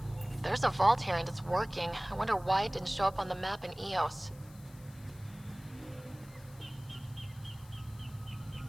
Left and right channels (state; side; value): noise; left; hiss, 24 dB below the sound